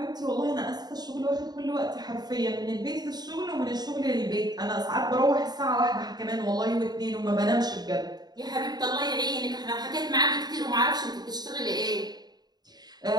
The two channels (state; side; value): late; left; 0.20 ms